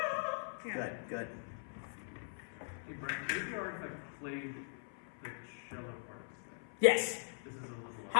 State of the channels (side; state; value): right; silent; 51 dB below the other